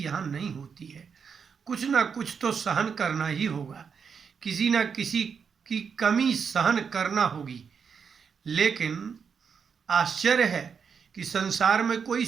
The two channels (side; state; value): left; quieter; 6.4 dB